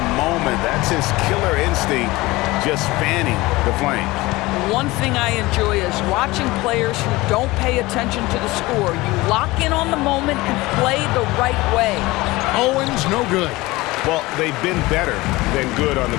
moment. That's his killer instinct, just fanning the flames. One thing I enjoy is watching players who don't pay attention to the score. You lock in on the moment and play the right way. Owens, no good. Well, they've been better than good on the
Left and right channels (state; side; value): quieter; right; 20.5 dB